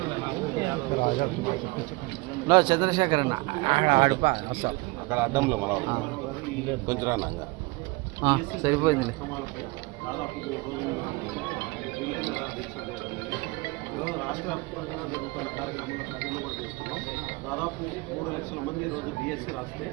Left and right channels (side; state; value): left; quieter; 24.2 dB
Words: చంద్రశేఖర్ అన్న ఆడిపా వస్తాం అక్కడ అడ్డంలో మన కొంచెం రానా సరిపోయింది. రాష్ట్ర వ్యాప్తంగా జరుగుతున్న కార్యక్రమంలో ఖాళీలో కూడా తీసుకున్నాం. దాదాపు 3 లక్షల మంది ఈరోజు డిఎస్సి రాస్తే